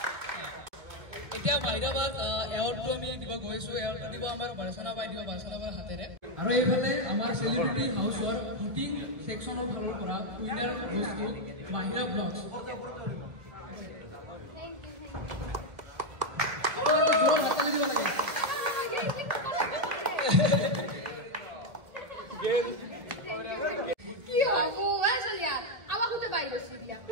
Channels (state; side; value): late; left; 1.4 ms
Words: এতিয়া মাহিৰাবাদ এৱাৰ্ডটো আমি দিব গৈছোঁ, এৱাৰ্ডটো দিব আমাৰ বাৰচনা বাই দিব, বাৰচনা বাৰ হাতেৰে। আৰু এইফালে আমাৰ চেলিব্ৰিটি হাউচৰ ভোটিং ছেকশ্যনৰ ফালৰ পৰা উইনাৰ বস্তু মাহিৰা ব্লগছ। কি হব চলিয়া আমাক গোটেই বাই গৈছিল